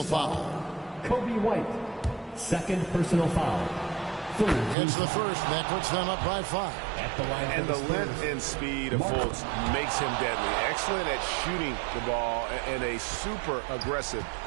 foul. Kobe White. Second personal foul. It's the first. That puts them up by 5. At the line and the length and speed of Fultz makes him deadly. Excellent at shooting the ball and a super aggressive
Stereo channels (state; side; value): drops out; left; at 4.8 s